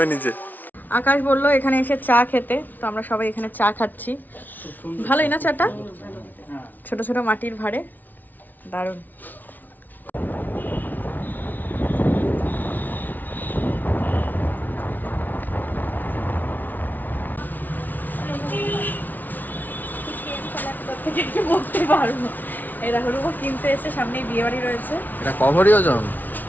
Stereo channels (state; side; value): late; right; 0.082 ms